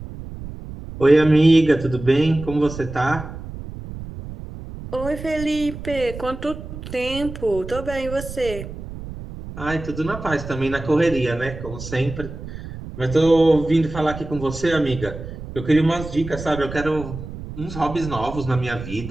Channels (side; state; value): right; noise; rumble, 11 dB below the sound